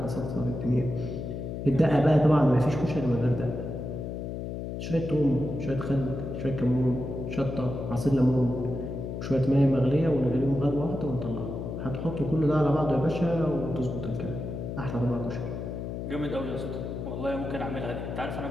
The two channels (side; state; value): left; noise; hum, 5 dB below the sound